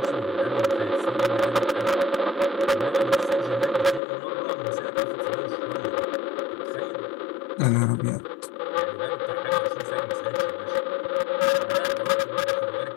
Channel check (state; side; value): drops out; right; at 4.0 s